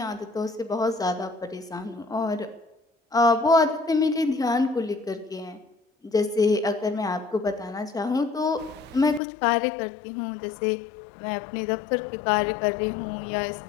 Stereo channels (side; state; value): right; drops out; at 9.2 s